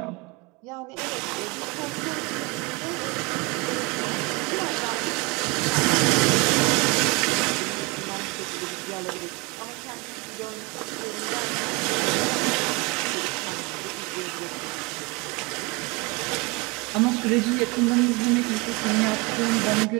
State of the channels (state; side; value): quieter; left; 26.9 dB